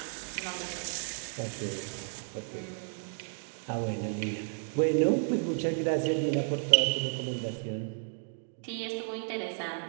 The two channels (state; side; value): silent; left; 56 dB below the other